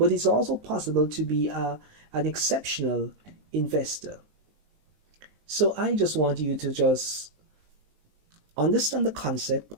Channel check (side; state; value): left; late; 19 ms